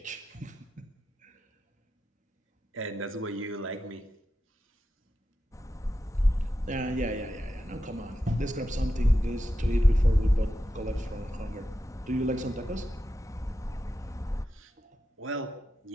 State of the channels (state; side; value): normal; both; correlation 0.90